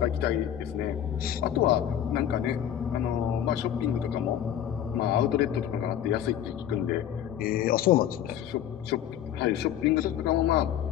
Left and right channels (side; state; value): right; quieter; 10.5 dB